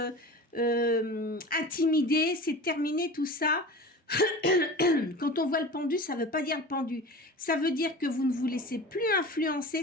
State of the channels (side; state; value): both; normal; correlation 0.35